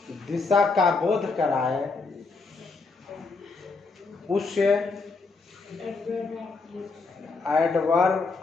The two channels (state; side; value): quieter; right; 4.1 dB